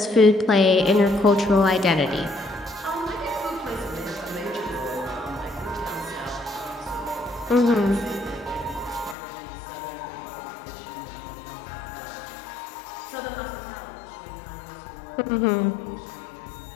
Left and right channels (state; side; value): drops out; right; at 9.2 s